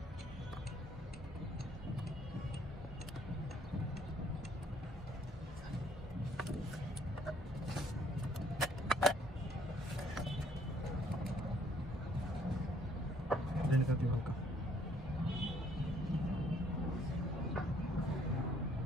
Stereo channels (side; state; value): both; normal; correlation 0.64